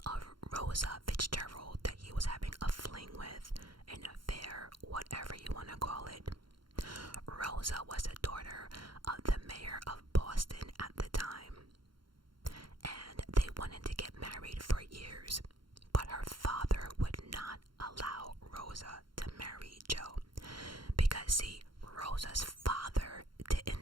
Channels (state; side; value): late; left; 0.73 ms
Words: of Rosa Fitzgerald that he was having a fling with, an affair, whatever you want to call it. Rosa was the daughter of the mayor of Boston at the time, and they wanted to get married for years, but her father would not allow Rosa to marry Joe because, see, Rosa's father